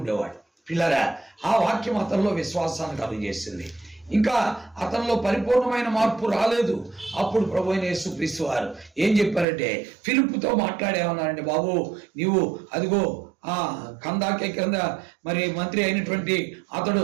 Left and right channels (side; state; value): left; drops out; at 9.5 s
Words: పిల్లరా, ఆ వాక్యం అతనిలో విశ్వాసాన్ని కలుగజేసింది. ఇంకా అతనిలో పరిపూర్ణమైన మార్పు రాలేదు. అప్పుడు ప్రభు అయిన యేసుక్రీస్తు వారు ఏం చెప్పారంటే, ఫిలిప్పుతో మాట్లాడేమన్నారంటే, బాబు నీవు అదిగో కందాకే కింద మరి మంత్రి అయినటువంటి అతడు